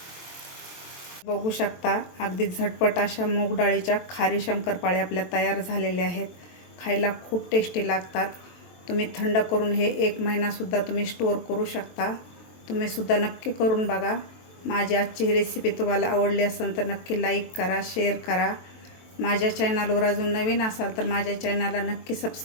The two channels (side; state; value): right; late; 23 ms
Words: बघू शकता अगदी झटपट अशा मूग डाळीच्या खारी शंकरपाळे आपल्या तयार झालेल्या आहेत. खायला खूप टेस्टी लागतात. तुम्ही थंड करून हे 1 महिनासुद्धा तुम्ही स्टोअर करू शकता. तुम्ही सुद्धा नक्की करून बघा. माझी आजची रेसिपी तुम्हाला आवडली असेल तर नक्की लाईक करा, शेअर करा. माझ्या चॅनलवर अजून नवीन असाल तर माझ्या चॅनलला नक्की